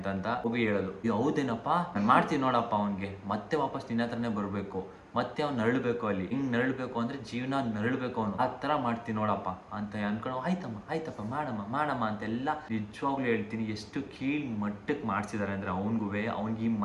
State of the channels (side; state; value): both; identical; correlation 1.00